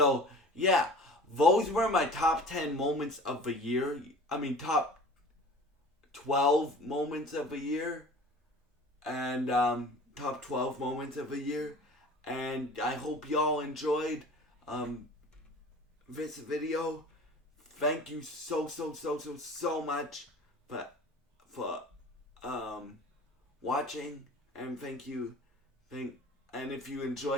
yeah, those were my top 10 moments of the year. I mean, top 12 moments of the year, and top 12 moments of the year. And I hope y'all enjoyed this video. Thank you so much for watching, and and if you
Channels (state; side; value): normal; both; correlation 0.43